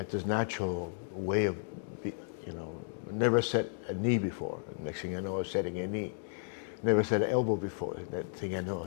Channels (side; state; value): right; silent; digital silence